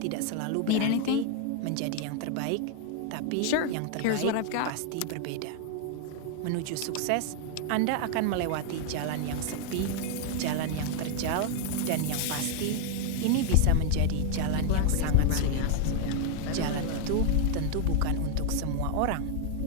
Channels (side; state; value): both; different; correlation 0.00